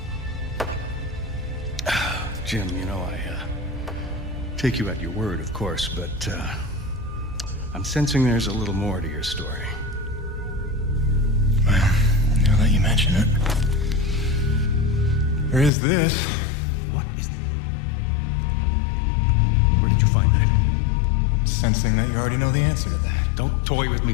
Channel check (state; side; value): drops out; right; at 15.7 s